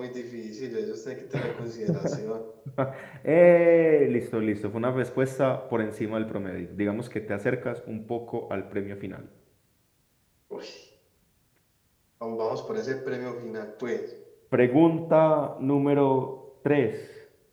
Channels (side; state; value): both; identical; correlation 1.00